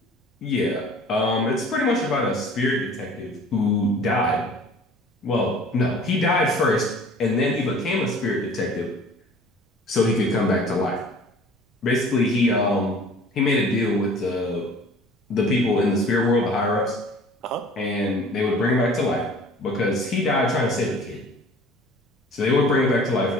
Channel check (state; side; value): normal; both; correlation 0.47